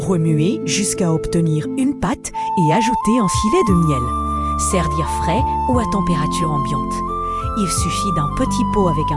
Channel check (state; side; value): identical; both; correlation 1.00